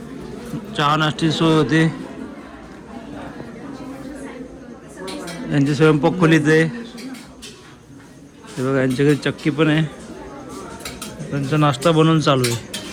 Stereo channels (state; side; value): identical; both; correlation 1.00